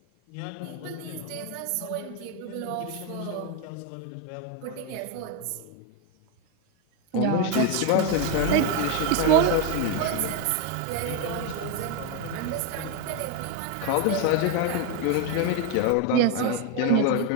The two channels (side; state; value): both; different; correlation 0.01